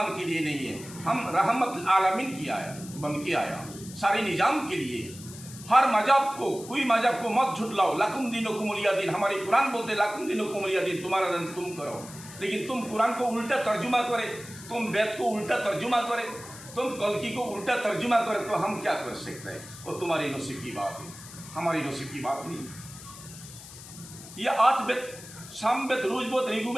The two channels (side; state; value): left; noise; hiss, 16 dB below the sound